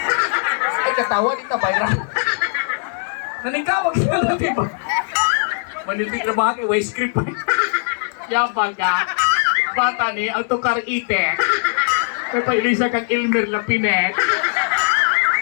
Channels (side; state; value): right; silent; digital silence